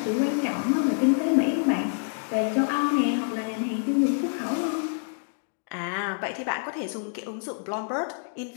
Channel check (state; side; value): silent; right; digital silence